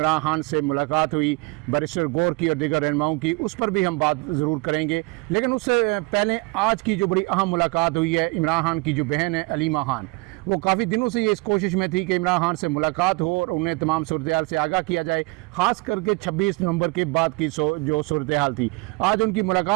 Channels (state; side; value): quieter; left; 26.9 dB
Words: खान से मुलाकात हुई बैरिस्टर गौर की और दीगर रहनुमाओं की, उस पर भी हम बात ज़रूर करेंगे। लेकिन उससे पहले आज की जो बड़ी अहम मुलाकात हुई है, इमरान खान की जो बहन है अलीमा खान, वो काफ़ी दिनों से ये इस कोशिश में थी कि इमरान खान से मुलाकात हो और उन्हें तमाम सूरत-ए-हाल से आगाह किया जाए, ख़ास करके 26 नवंबर के बाद की जो सूरत-ए-हाल थी। आज उनकी